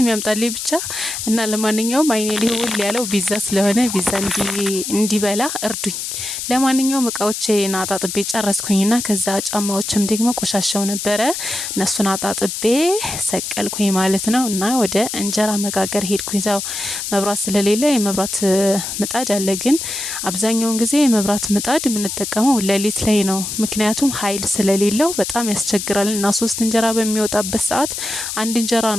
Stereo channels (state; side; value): noise; left; hiss, 5 dB below the sound